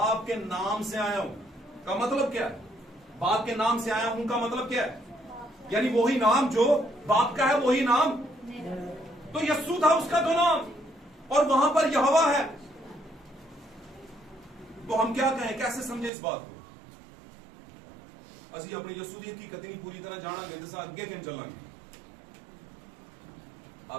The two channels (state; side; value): drops out; left; at 16.1 s